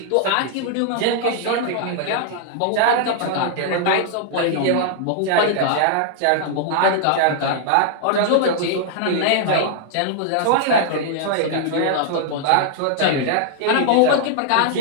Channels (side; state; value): both; different; correlation 0.00